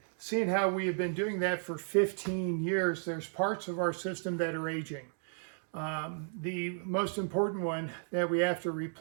seeing how we have been doing that for 15 years, there's parts of our system that are aging. The most important one that we have to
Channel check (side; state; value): left; silent; digital silence